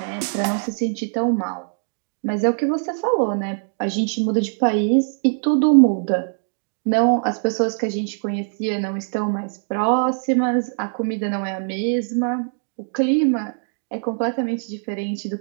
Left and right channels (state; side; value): silent; left; digital silence